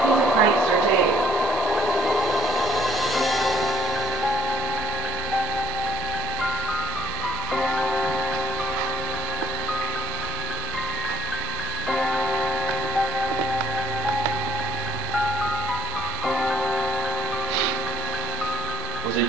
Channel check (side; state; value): both; normal; correlation 0.65